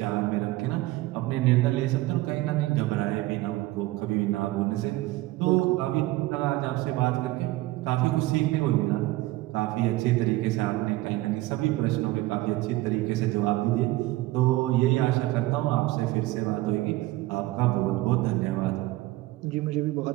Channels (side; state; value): left; quieter; 18.2 dB